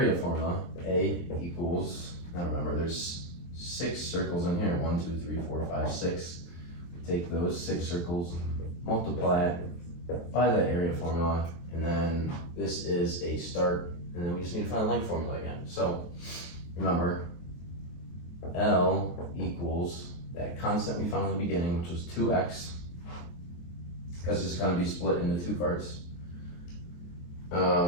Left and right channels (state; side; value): late; right; 23 ms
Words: formula, A equals, now remember there's 6 circles in here, 1, 2, 3, 4, 5, 6. We take those 6 circles, multiply it by the area formula, and then this is a start, and then we just need to find the length formula again. So remember, L equals that constant we found in the beginning, which was 2x, because it's going to be split into 2 parts.